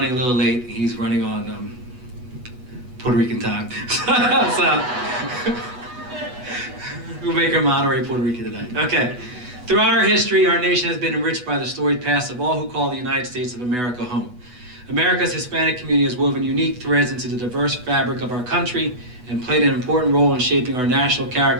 a little late. He's running on Puerto Rican time. So we'll make him honorary Puerto Rican tonight. Okay. Throughout our history, our nation has been enriched by the storied past of all who call the United States of America home. America's Hispanic community has woven unique threads into the diverse fabric of our country and played an important role in shaping our national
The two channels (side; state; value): left; late; 8.1 ms